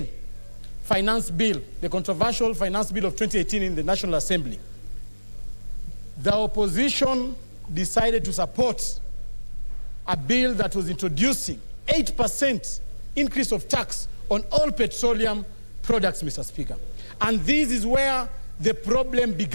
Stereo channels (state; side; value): inverted; both; correlation -1.00